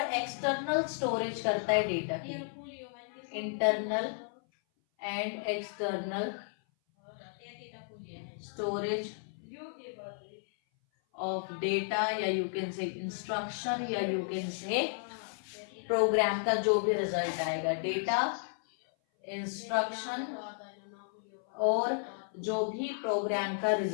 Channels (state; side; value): silent; right; 55 dB below the other